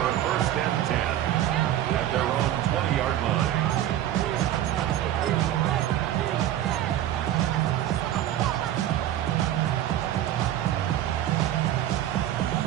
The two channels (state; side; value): quieter; left; 12.3 dB